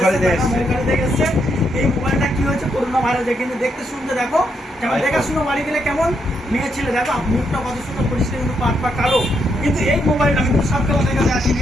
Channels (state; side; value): normal; both; correlation 0.78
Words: দেখে এসছে। এই মোবাইলটা কি হয়েছে, করোনা ভাইরাস কিন্তু দেখতে শুনতে দেখো কেমন দেখাশুনো বাড়ি গেলে কেমন মেয়ে ছেলে দেখো মুখটা কত সুন্দর পরিষ্কার, কিন্তু পা কালো। কিন্তু এই মোবাইলটা কিন্তু সবকে দেখাতে আসেনি।